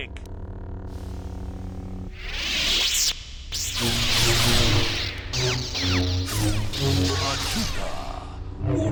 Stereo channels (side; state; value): both; identical; correlation 1.00